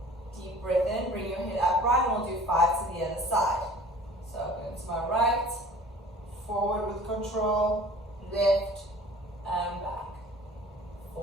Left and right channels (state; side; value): normal; both; correlation 0.47